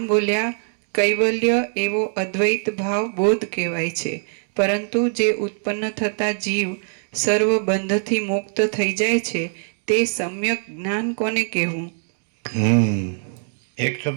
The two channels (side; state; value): left; silent; digital silence